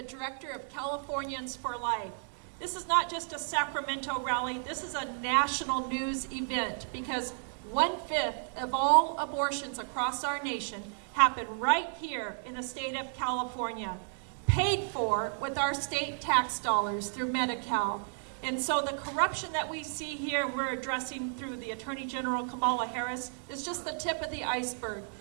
director of Californians for Life. This is not just a Sacramento rally, this is a national news event because 1/5 of all abortions across our nation happen right here in the state of California, paid for with our state tax dollars through Medi-Cal. And so the corruption that we see here, we're addressing through the Attorney General Kamala Harris, is just the tip of the iceberg.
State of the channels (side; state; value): left; silent; 56 dB below the other